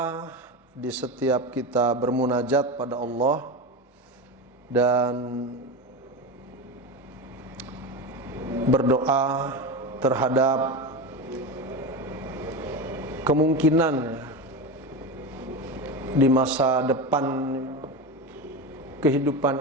di setiap kita bermunajat pada Allah dan berdoa terhadap kemungkinan di masa depan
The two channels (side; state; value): both; normal; correlation 0.21